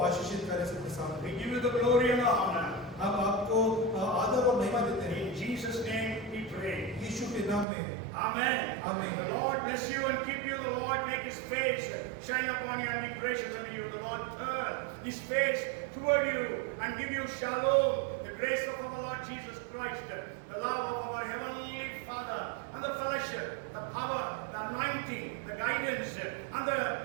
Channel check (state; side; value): drops out; left; at 7.7 s